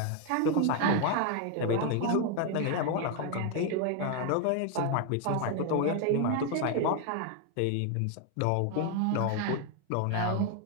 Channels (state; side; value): different; both; correlation 0.01